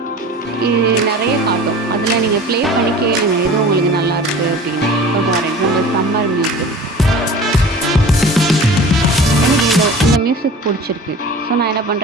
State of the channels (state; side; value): normal; both; correlation 0.41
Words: இது நிறைய காட்டும். அதில் நீங்கள் ப்ளே பண்ணி கேளுங்க எது உங்களுக்கு நல்லாயிருக்கு அப்படின்னு. இப்போ ஃபார் எக்ஸாம்பிள் சம்மர் மியூசிக், எனக்கு இந்த மியூசிக் பிடிச்சிருக்கு. ஸோ நான் என்ன